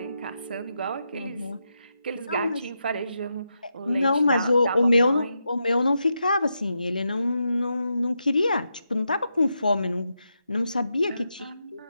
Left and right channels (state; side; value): inverted; both; correlation -0.85